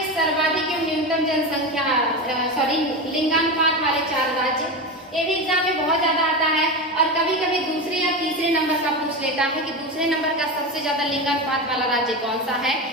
सर्वाधिक एवं न्यूनतम जनसंख्या लिंगानुपात वाले 4 राज्य, ये भी एग्जाम में बहुत ज्यादा आता है और कभी कभी दूसरे या तीसरे नंबर का पूछ लेता है कि दूसरे नंबर का सबसे ज्यादा लिंगानुपात वाला राज्य कौन सा है।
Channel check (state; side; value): normal; both; correlation 0.20